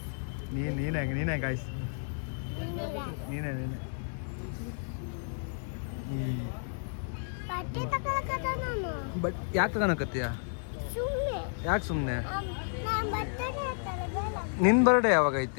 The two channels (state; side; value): silent; right; digital silence